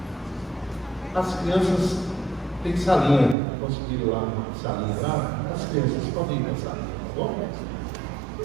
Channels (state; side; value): drops out; left; at 3.4 s